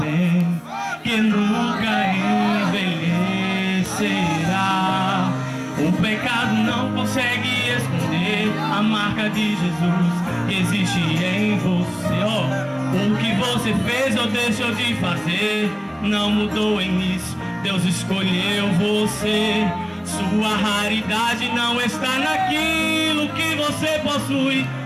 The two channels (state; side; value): identical; both; correlation 1.00